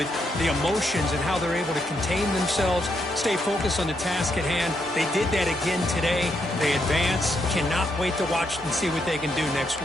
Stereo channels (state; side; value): normal; both; correlation 0.78